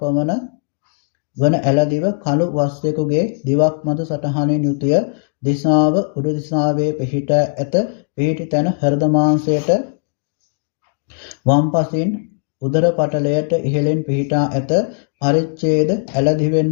වන ඇලදිව කළු වස්යකුගේ දිවක් මත සටහනින් යුතුය. දිසාව උඩු දිසාවේ පිහිටා ඇත. පිහිටි තැන හෘද මාංශයට වම් පසින් උදර පටලයට ඉහළින් පිහිටා ඇත. පරිච්ඡේද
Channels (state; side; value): silent; right; digital silence